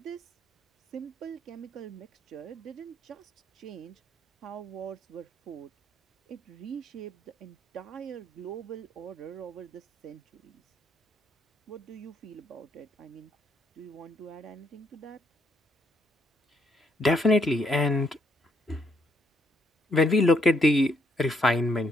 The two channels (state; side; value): normal; both; correlation 0.72